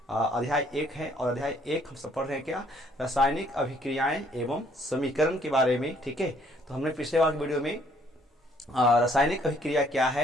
अध्याय 1 है और अध्याय 1 हम सब पढ़ रहे हैं क्या, रासायनिक अभिक्रियाएं एवं समीकरण के बारे में, ठीक है। तो हमने पिछले वाले वीडियो में रासायनिक अभिक्रिया क्या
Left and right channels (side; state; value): both; normal; correlation 0.64